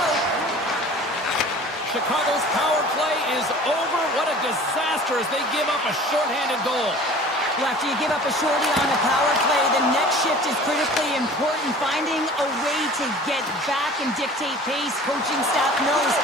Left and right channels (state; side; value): normal; both; correlation 0.44